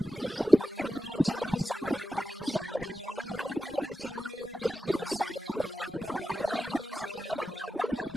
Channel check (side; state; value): both; normal; correlation 0.91